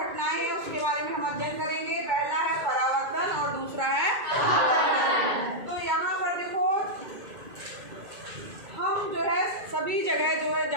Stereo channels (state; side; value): late; left; 2.2 ms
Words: हैं उसके बारे में हम अध्ययन करेंगे। पहला है परावर्तन और दूसरा है अपवर्तन। तो यहाँ पर देखो, हम जो है सभी जगह जो है